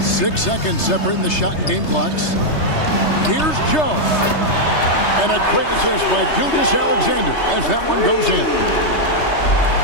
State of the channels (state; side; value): late; right; 3.3 ms